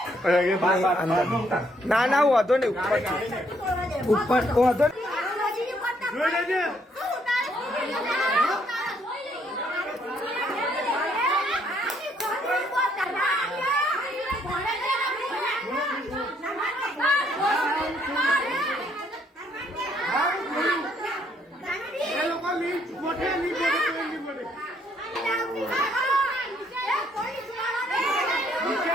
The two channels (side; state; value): both; normal; correlation 0.69